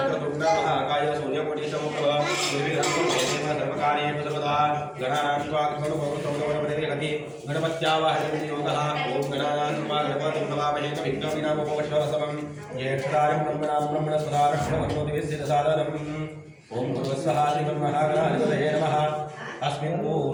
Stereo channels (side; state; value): both; identical; correlation 1.00